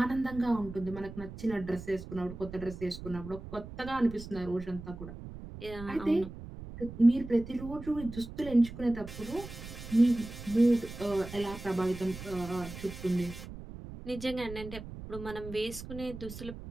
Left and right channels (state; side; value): noise; right; rumble, 12 dB below the sound